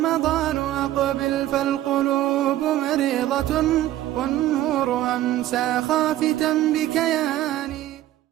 أقبل فالقلوب مريضة، والنور أمسى خافتا بكياني.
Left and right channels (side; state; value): left; quieter; 14.0 dB